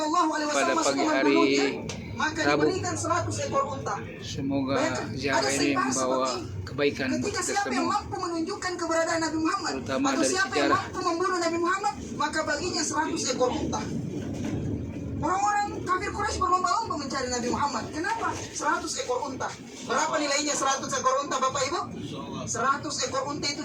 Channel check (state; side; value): identical; both; correlation 1.00